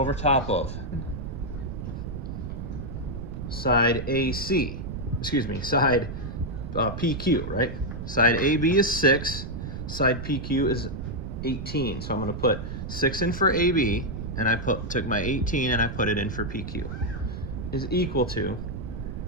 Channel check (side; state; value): right; noise; rumble, 7 dB below the sound